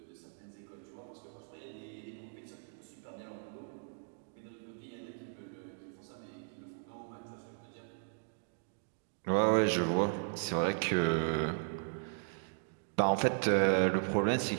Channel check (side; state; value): left; silent; digital silence